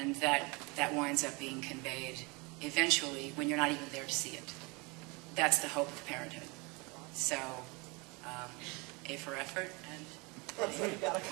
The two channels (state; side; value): quieter; left; 27.8 dB